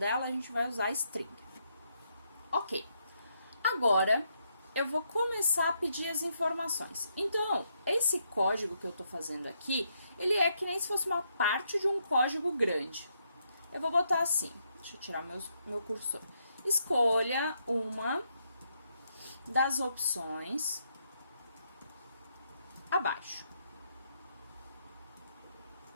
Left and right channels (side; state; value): both; inverted; correlation -0.77